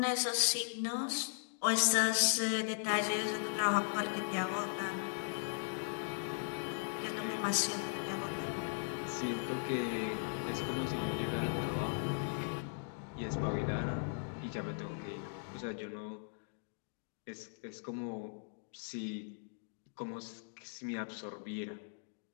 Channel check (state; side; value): silent; right; digital silence